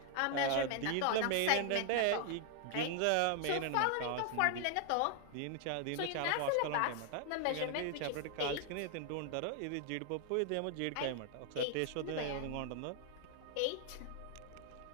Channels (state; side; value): different; both; correlation 0.00